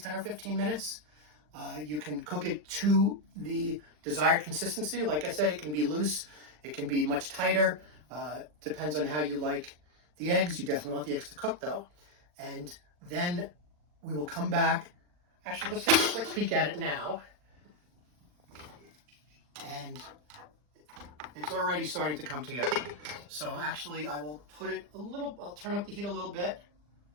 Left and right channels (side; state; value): left; late; 40 ms